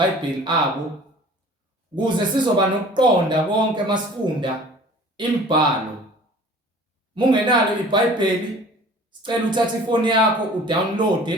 abo ukuze sizoba nokuqonda konke masifunda imibhalo. Mungenalo iBhayibheli, sicela uthathe ifoni yakho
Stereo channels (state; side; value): normal; both; correlation 0.46